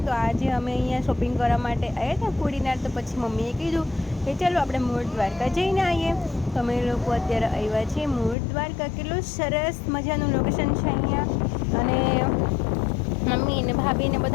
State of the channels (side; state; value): right; drops out; at 8.3 s